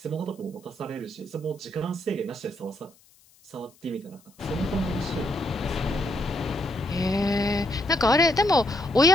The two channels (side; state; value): left; noise; hiss, 30 dB below the sound